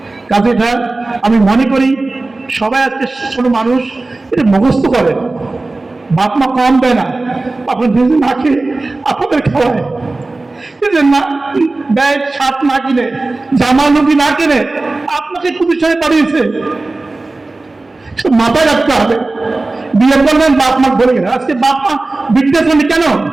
কাজে এটা আমি মনে করি সবাই আজকে ছোট মানুষ এটা মুখস্থ করে, বাপ মা কম দেয় না, আপনার নিজে না খেয়ে আপনাদের খাওয়ায়, না ব্যয় শার্ট না কিনে, জামা লুঙ্গি না কিনে আপনাকে প্রতিষ্ঠানে পাঠিয়েছে, মাথায় রাখতে হবে। বিয়ে করলেন বাপ মা বলে গেলেন, আজকে বাপ মা বৃদ্ধাশ্রমে কেন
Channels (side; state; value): left; quieter; 3.2 dB